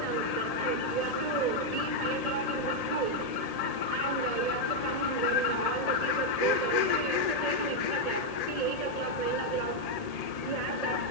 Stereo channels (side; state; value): right; late; 1.8 ms